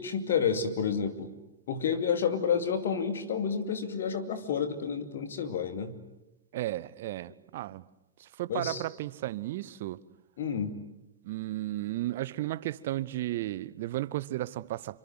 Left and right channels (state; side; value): inverted; both; correlation -0.35